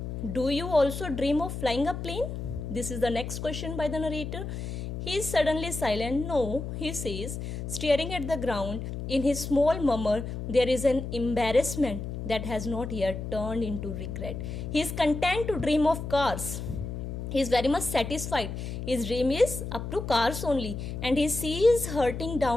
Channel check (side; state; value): left; noise; hum, 6 dB below the sound